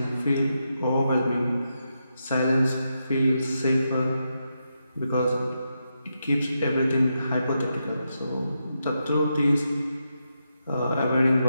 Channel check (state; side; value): inverted; both; correlation -0.85